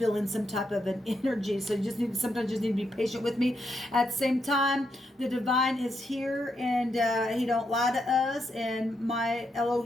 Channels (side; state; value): both; normal; correlation 0.81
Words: some type of an energy. So you sometimes just need to be patient with me. At the same time, the divine is here, and he don't lie to us. And my